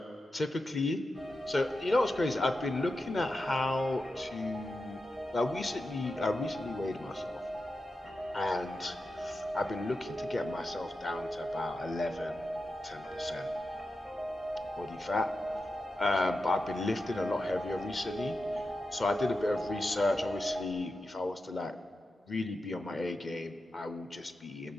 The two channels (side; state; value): both; normal; correlation 0.90